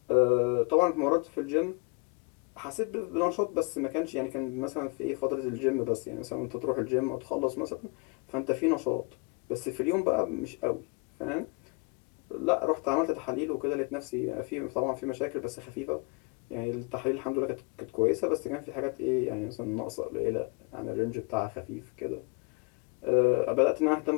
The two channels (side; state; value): right; quieter; 30.2 dB